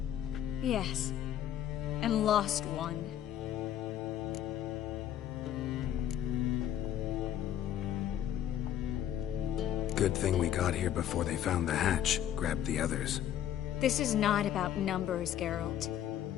Yes. And lost one. Good thing we got here before they found the hatch, grabbed the others. This is not about numbers, Geralt.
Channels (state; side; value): quieter; right; 10.9 dB